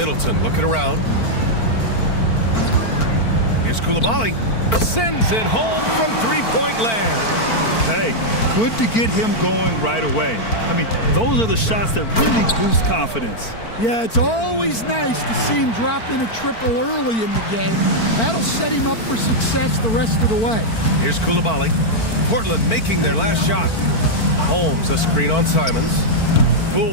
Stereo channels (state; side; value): late; right; 4.5 ms